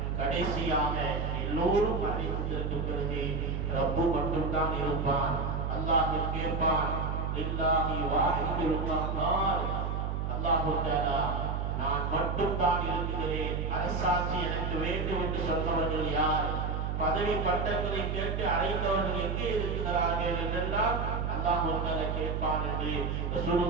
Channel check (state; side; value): noise; right; hum, 1 dB below the sound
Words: கடைசியாக எல்லோரும் அறிவித்ததற்கு பிறகு ரப்பு மட்டும்தான் இருப்பான். அல்லாஹ் கேட்பான், லில்லாஹி வாஹிதுல் கஹ்ஹார், அல்லாஹ் தஆலா நான் மட்டும்தான் இருக்கிறேன், அரசாட்சி எனக்கு வேண்டும் என்று சொன்னவர்கள் யார், பதவி பட்டங்களை கேட்டு அழைத்தவர்கள் எங்கே இருக்கிறார்கள் என்றெல்லாம் அல்லாஹ் தஆலா கேட்பான் என்று